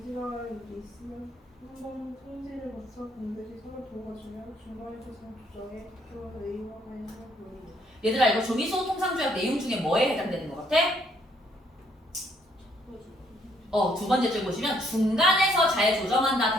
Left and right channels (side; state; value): both; normal; correlation 0.68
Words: 있으면 한 번 통지를 거쳐 반드시 서로 도와주며 중간에서 조정에 들어서 의무와 관련한 부분입니다. 얘들아, 이거 조미수호 통상조약 내용 중에 뭐에 해당되는 것 같아? 두 번째 줄 보시면 중간에서 잘 조정한다